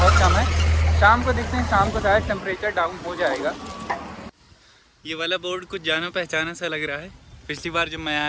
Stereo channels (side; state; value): both; identical; correlation 1.00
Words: कम है। शाम को देखते हैं, शाम को शायद टेम्परेचर डाउन हो जाएगा। ये वाला बोर्ड कुछ जाना पहचाना सा लग रहा है, पिछली बार जब मैं